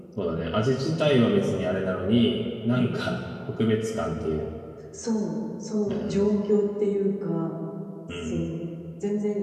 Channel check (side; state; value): both; identical; correlation 1.00